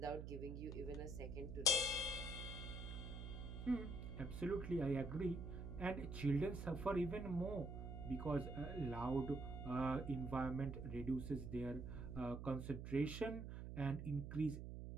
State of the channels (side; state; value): right; noise; hum, 7 dB below the sound